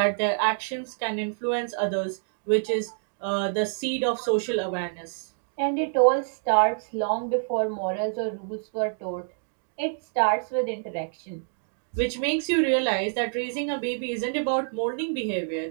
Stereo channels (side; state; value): left; silent; digital silence